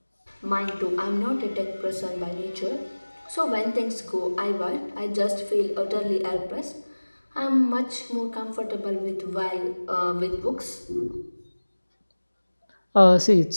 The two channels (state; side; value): inverted; both; correlation -1.00